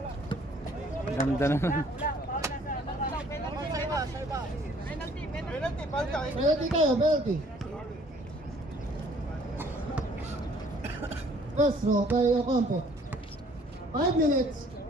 Ganda naman. Penalty tayo, penalty. First row by Ocampo. 5 minutes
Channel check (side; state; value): both; normal; correlation 0.58